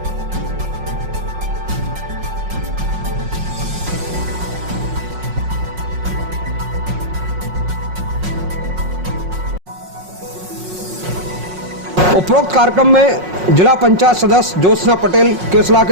उपरोक्त कार्यक्रम में जिला पंचायत सदस्य ज्योत्सना पटेल, केसला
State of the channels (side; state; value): left; late; 5.5 ms